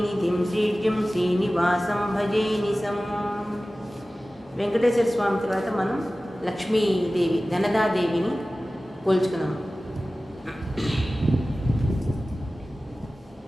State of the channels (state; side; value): normal; both; correlation 0.96